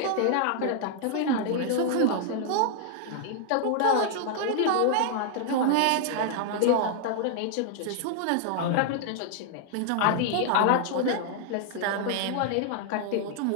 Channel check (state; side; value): different; both; correlation 0.00